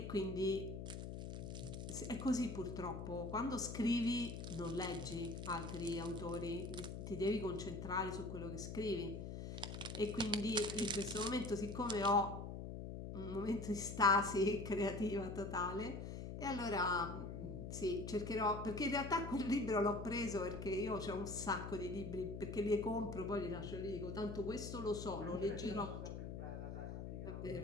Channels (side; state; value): left; noise; hum, 6 dB below the sound